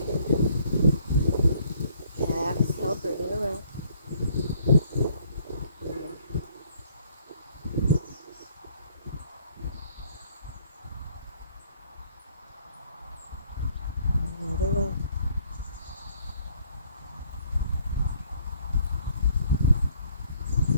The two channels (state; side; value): inverted; both; correlation -0.63